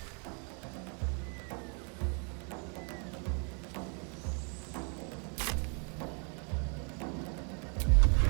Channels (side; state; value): left; quieter; 38.8 dB